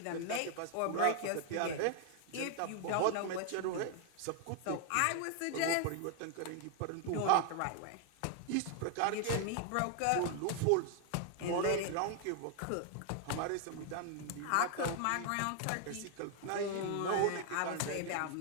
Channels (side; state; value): both; different; correlation 0.00